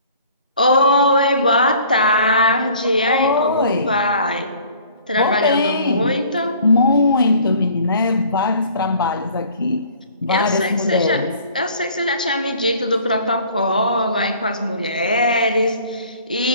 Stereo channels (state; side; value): inverted; both; correlation -0.52